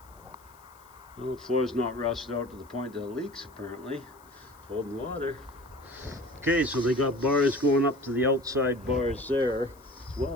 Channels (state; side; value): noise; left; hiss, 28 dB below the sound